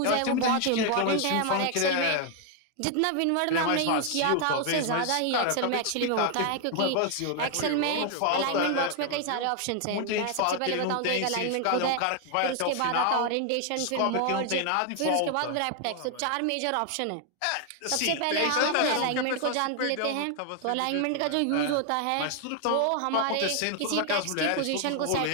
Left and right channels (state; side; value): different; both; correlation 0.00